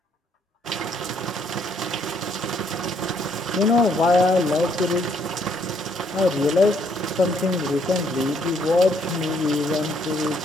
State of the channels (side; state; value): both; normal; correlation 0.69